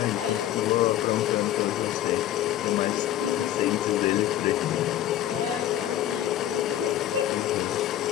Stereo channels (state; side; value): quieter; right; 12.4 dB